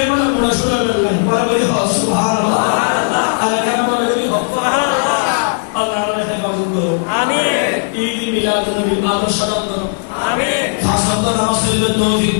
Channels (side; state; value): right; silent; digital silence